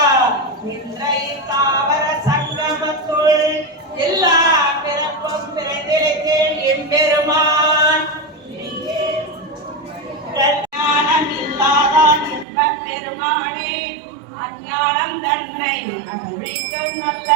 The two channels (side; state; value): left; drops out; at 12.5 s